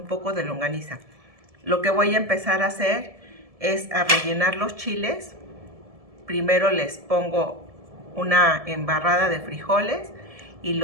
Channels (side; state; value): left; late; 1.7 ms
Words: poco de longaniza. Lo que voy a empezar a hacer es a rellenar los chiles. Primero les pongo una embarrada de frijoles y